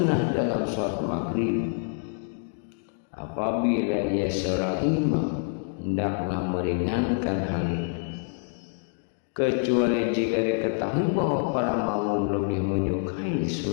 dalam sholat maghrib. Apabila ia seorang imam, hendaklah meringankan hal itu, kecuali jika diketahui bahwa para makmum lebih menyukai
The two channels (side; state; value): right; silent; 60 dB below the other